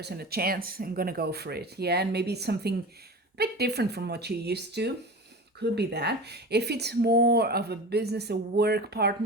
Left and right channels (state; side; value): normal; both; correlation 0.32